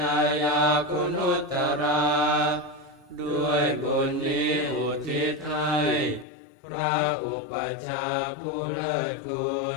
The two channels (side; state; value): right; drops out; at 6.2 s